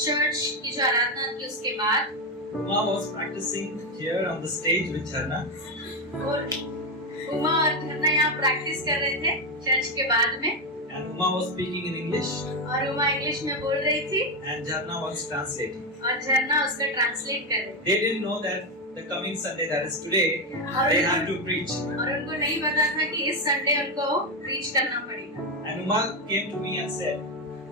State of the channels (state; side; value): normal; both; correlation 0.09